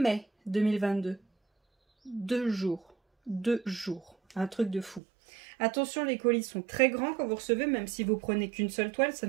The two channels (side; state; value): left; drops out; at 5.0 s